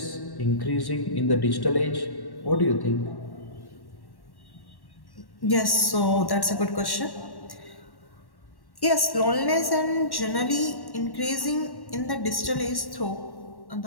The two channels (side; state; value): right; late; 1.1 ms